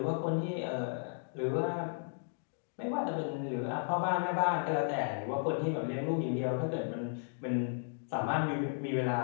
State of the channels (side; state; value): right; silent; digital silence